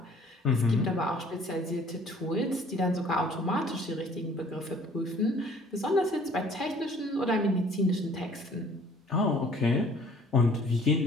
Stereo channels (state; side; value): normal; both; correlation 0.55